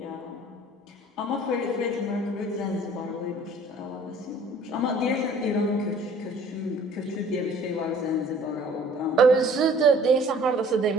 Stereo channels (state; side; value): normal; both; correlation 0.52